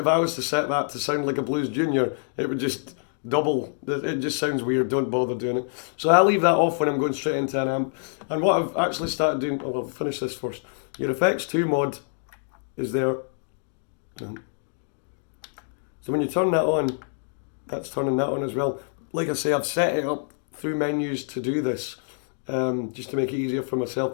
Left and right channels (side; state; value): right; silent; digital silence